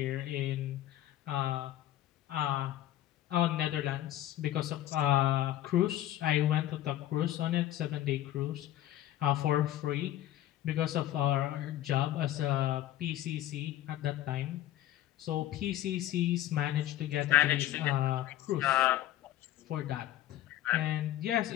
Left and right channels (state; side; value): quieter; right; 13.5 dB